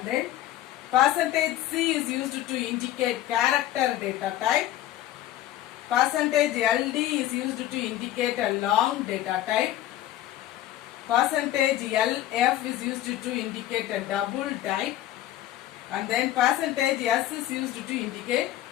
then percentage C is used to indicate character data type. Percentage LD is used to indicate a long data type. Percentage LF is used to indicate a double type. And then percentage S is used to indicate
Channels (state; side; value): quieter; right; 13.6 dB